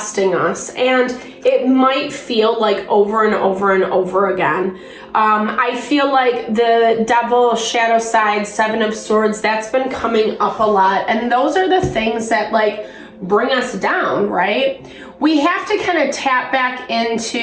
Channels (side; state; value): both; identical; correlation 1.00